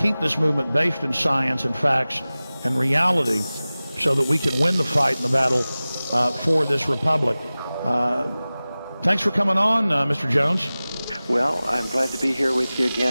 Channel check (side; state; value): both; inverted; correlation -0.98